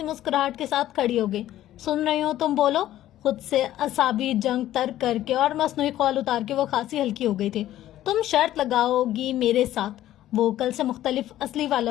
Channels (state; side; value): quieter; right; 13.4 dB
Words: مسکراہٹ کے ساتھ کھڑی ہو گئی. سن رہی ہو تم بولو. خود سے اعصابی جنگ ترک کر کے اور مصنوعی خول اتار کے وہ خاصی ہلکی ہو گئی تھی. تم شرط لگاؤ گی میرے ساتھ. وہ کل سے مختلف اصلی